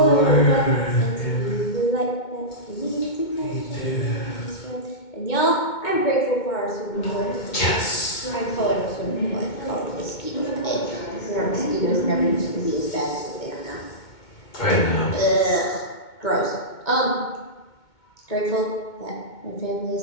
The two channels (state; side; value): late; right; 2.2 ms